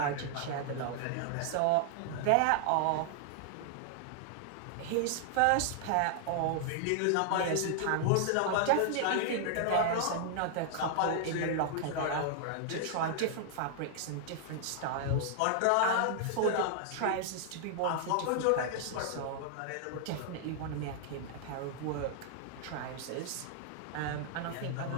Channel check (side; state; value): both; different; correlation 0.00